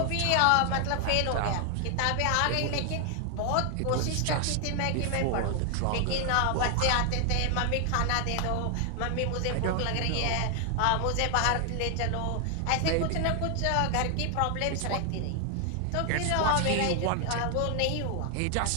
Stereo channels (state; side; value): different; both; correlation 0.00